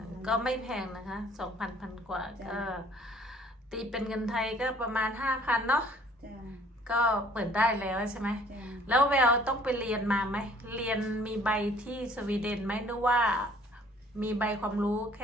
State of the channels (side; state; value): both; normal; correlation 0.56